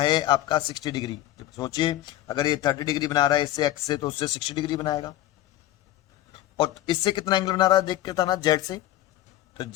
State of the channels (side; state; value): right; quieter; 14.2 dB